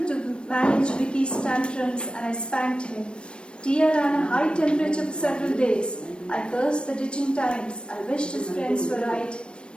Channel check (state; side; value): late; right; 0.056 ms